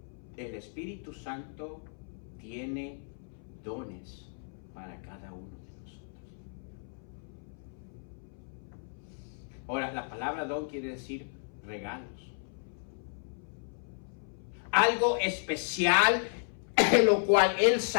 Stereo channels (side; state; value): right; silent; 55 dB below the other